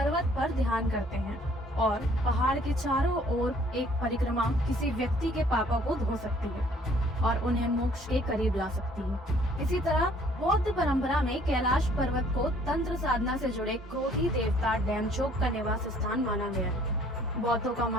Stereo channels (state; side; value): normal; both; correlation 0.59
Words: पर ध्यान करते हैं और पहाड़ के चारों ओर एक परिक्रमा किसी व्यक्ति के पापों को धो सकती है और उन्हें मोक्ष के करीब ला सकती है। इसी तरह बौद्ध परंपरा में कैलाश पर्वत को तंत्र साधना से जुड़े क्रोधी देवता डेमचोक का निवास स्थान माना गया है। बौद्धों का